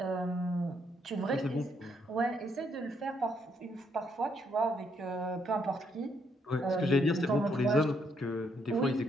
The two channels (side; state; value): both; normal; correlation 0.73